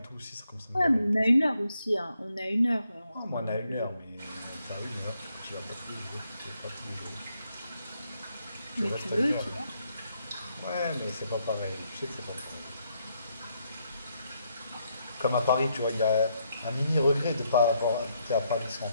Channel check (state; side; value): inverted; both; correlation -0.76